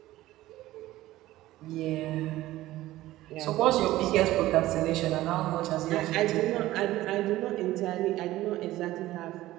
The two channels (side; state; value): left; quieter; 16.1 dB